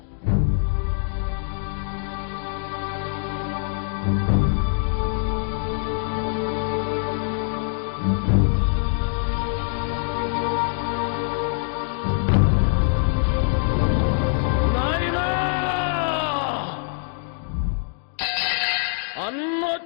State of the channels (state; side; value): silent; right; digital silence